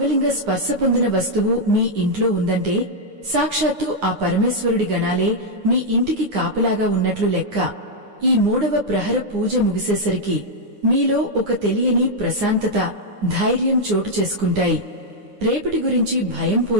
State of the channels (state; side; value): late; left; 9.7 ms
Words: స్పర్శ పొందిన వస్తువు మీ ఇంట్లో ఉందంటే సాక్షాత్తు ఆ పరమేశ్వరుడి గణాలే మీ ఇంటికి కాపలాగా ఉన్నట్లు లెక్క. ఈ 3వ ప్రహర పూజ ముగిసేసరికి మీలో ఒక తెలియని ప్రశాంతత, ధైర్యం చోటు చేసుకుంటాయి. రేపటి గురించి భయం